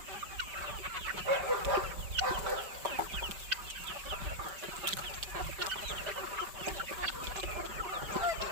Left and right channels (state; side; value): late; left; 5.1 ms